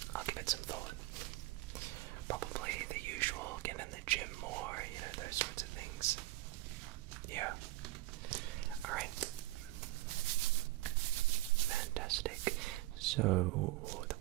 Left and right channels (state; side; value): quieter; left; 18.3 dB